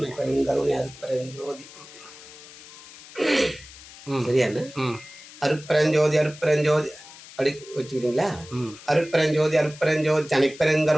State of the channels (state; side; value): noise; left; hiss, 18 dB below the sound